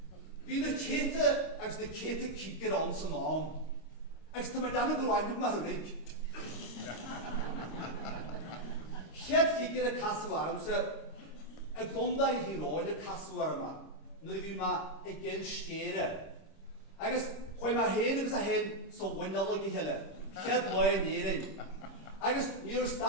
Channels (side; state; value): right; late; 26 ms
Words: Bhí na cleite agus na cleite cígeir an san am, agus tá mar dána go bhhainú mar thunig. Chead cígeir a casúarmsa a gondaí híráin a casúarma, nuair a bhí má i gil scéire. Agus chuir má héin agus a héin sa bhainneala i heile, chead láin éirin. Agus níor